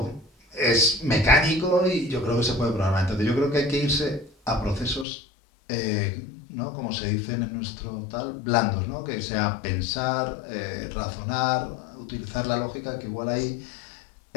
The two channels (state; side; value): drops out; right; at 5.1 s